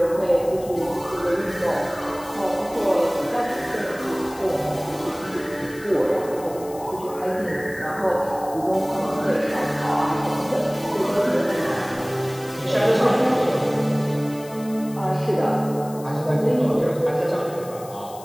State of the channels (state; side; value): noise; left; hiss, 19 dB below the sound